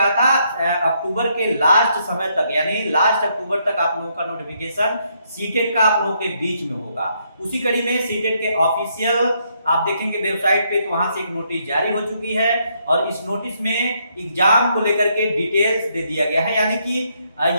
था अक्टूबर के लास्ट समय तक, यानी लास्ट अक्टूबर तक आप लोगों का नोटिफिकेशन सीटेट का आप लोगों के बीच में होगा। उसी कड़ी में सीटेट के ऑफिशियल आप देखेंगे वेबसाइट पे, तो वहां से एक नोटिस जारी हो चुकी है और इस नोटिस में एग्जाम को लेकर के डिटेल्स दे दिया गया है। यानी कि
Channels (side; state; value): both; inverted; correlation -0.74